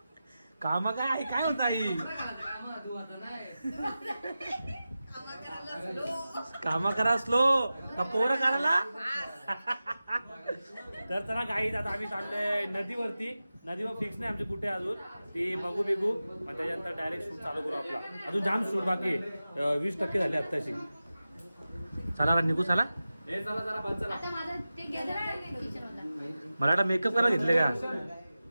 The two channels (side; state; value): both; inverted; correlation -0.94